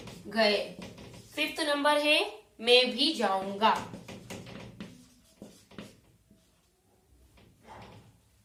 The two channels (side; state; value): both; identical; correlation 1.00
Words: गए। फिफ्थ नंबर है मैं भी जाऊंगा।